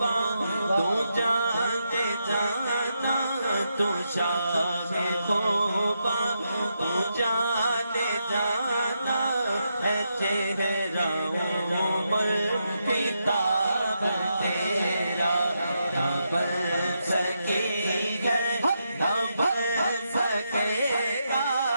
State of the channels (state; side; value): inverted; both; correlation -0.83